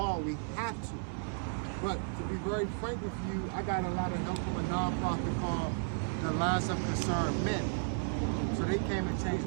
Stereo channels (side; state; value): left; silent; 55 dB below the other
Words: we have to. But to be very frank with you, I got a lot of help from a nonprofit called the Alliance of Concerned Men. So they came and changed